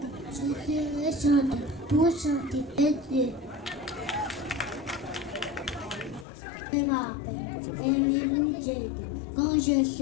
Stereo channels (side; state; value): right; drops out; at 6.2 s